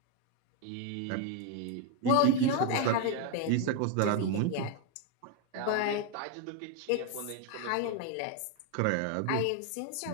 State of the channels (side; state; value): both; different; correlation 0.01